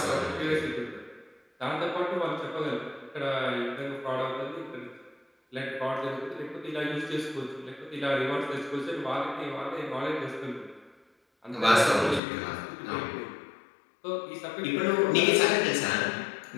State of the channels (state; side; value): drops out; right; at 12.2 s